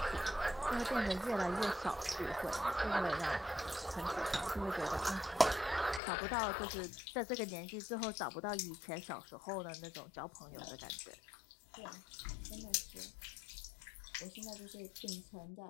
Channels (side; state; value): right; drops out; at 6.0 s